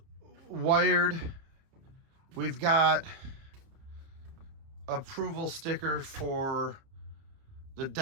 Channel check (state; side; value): late; left; 30 ms